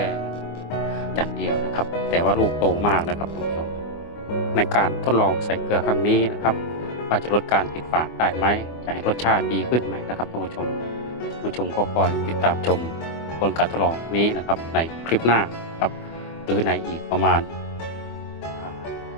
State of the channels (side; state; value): right; late; 24 ms